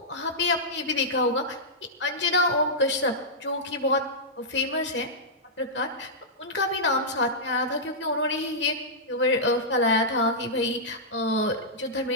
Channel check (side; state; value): both; normal; correlation -0.12